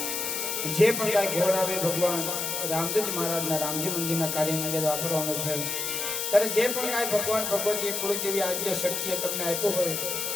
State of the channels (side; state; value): left; noise; hiss, 2 dB below the sound